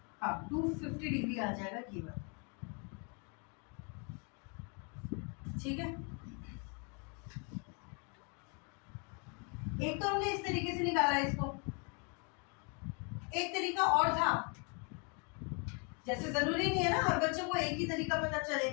हाँ 250 डिग्री आ जाएगा ये वाला, ठीक है। एक तो हमने इस तरीके से निकाला इसको, एक तरीका और था, जैसे जरूरी नहीं है ना हर बच्चों को एक ही तरीका पता चले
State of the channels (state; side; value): quieter; right; 36.0 dB